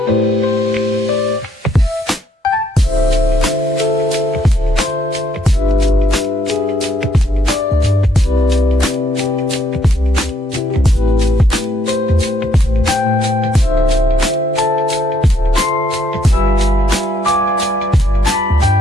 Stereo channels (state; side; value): normal; both; correlation 0.69